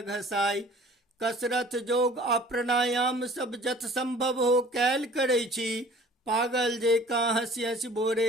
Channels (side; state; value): both; normal; correlation 0.49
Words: कसरत योग आ प्राणायाम सब जत संभव हो कैल करै छी। पागल जेकाँ हंसी हंसी भोरे